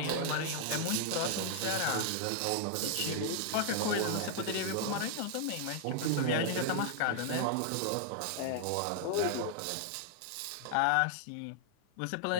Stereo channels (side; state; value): both; different; correlation -0.01